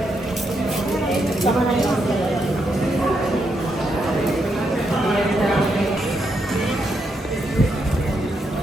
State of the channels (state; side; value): normal; both; correlation 0.80